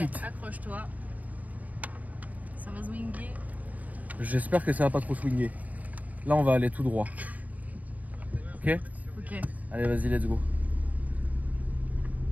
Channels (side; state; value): left; late; 0.073 ms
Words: prêt. Accroche-toi. Ça va swinguer. j'espère que ça va pas trop swinguer. Là, on va aller tout droit. Ok? Ok. Allez, vas-y, let's go.